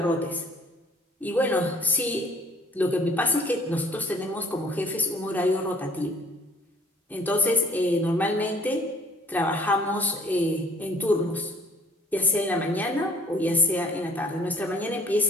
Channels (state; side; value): normal; both; correlation 0.56